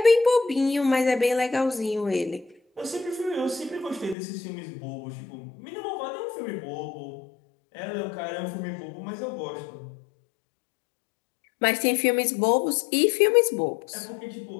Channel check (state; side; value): drops out; right; at 4.2 s